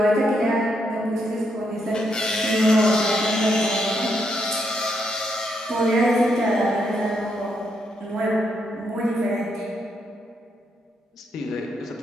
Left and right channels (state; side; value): normal; both; correlation 0.78